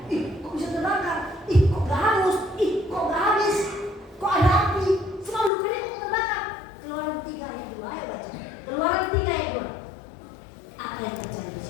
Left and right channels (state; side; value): drops out; right; at 5.5 s